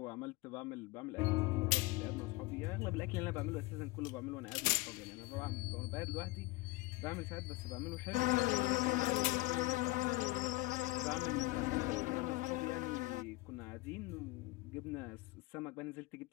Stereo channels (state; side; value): quieter; right; 21.1 dB